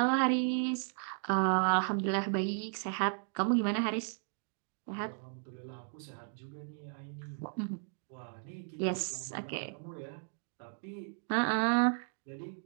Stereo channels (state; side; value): silent; left; 54 dB below the other